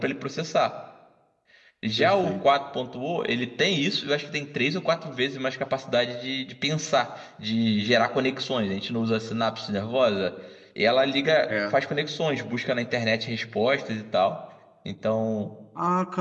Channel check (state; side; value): identical; both; correlation 1.00